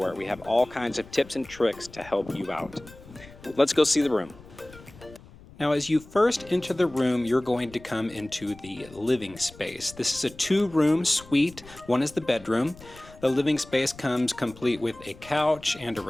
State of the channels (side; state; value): left; noise; rumble, 20 dB below the sound